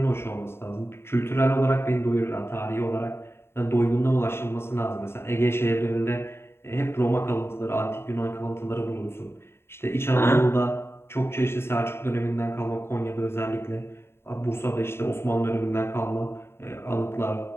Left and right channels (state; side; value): late; right; 0.12 ms